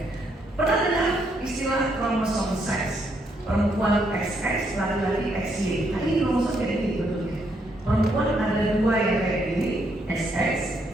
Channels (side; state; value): both; normal; correlation 0.74